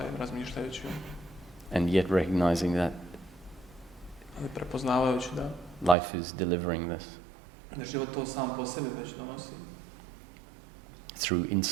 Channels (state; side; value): drops out; left; at 6.0 s